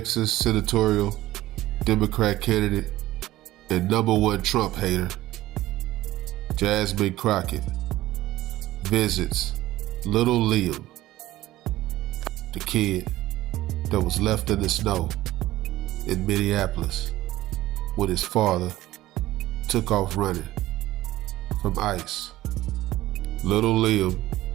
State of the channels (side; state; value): left; quieter; 16.1 dB